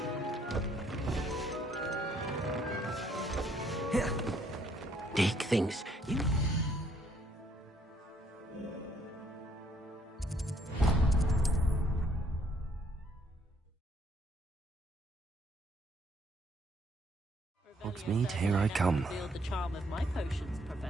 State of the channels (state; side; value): normal; both; correlation 0.67